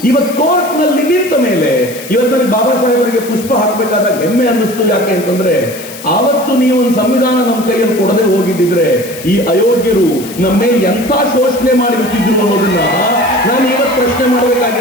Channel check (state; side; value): noise; left; hiss, 14 dB below the sound